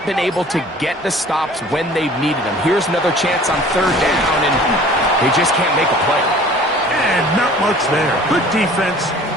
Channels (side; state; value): both; normal; correlation 0.48